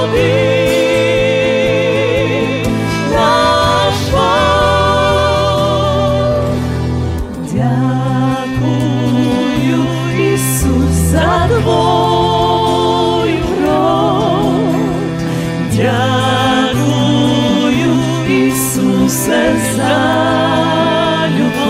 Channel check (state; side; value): identical; both; correlation 1.00